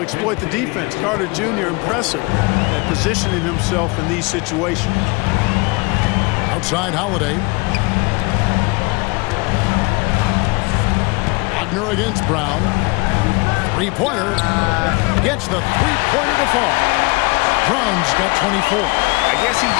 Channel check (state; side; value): quieter; right; 26.9 dB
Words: exploit the defense. Carter Jr. impressive at positioning himself in these situations. Outside Holiday. Wagner against Brown. Three-pointer. Gets the three-pointer to fall. Brown's got 24. I guess he